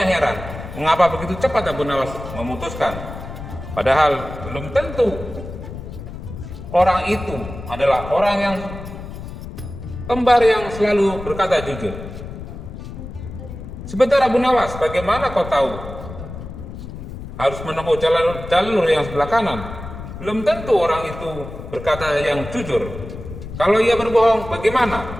heran, mengapa begitu cepat Abu Nawas memutuskan, padahal belum tentu orang itu adalah orang yang kembar yang selalu berkata jujur. "Sebentar Abu Nawas, bagaimana kau tahu harus menempuh jalur yang sebelah kanan? belum tentu orang itu berkata yang jujur. Kalau ia berbohong, bagaimana?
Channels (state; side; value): noise; left; rumble, 11 dB below the sound